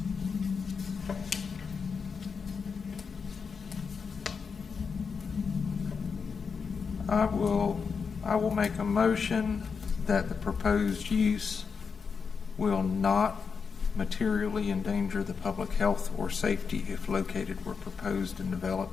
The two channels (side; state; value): right; quieter; 5.6 dB